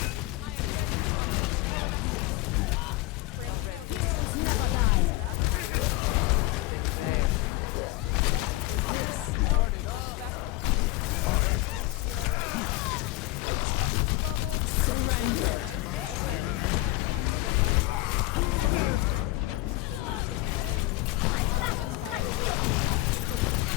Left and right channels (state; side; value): quieter; right; 19.1 dB